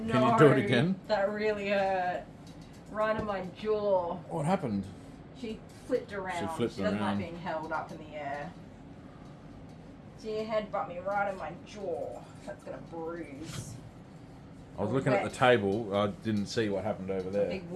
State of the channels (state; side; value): identical; both; correlation 1.00